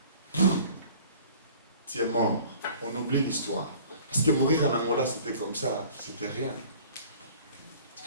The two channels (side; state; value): both; inverted; correlation -0.49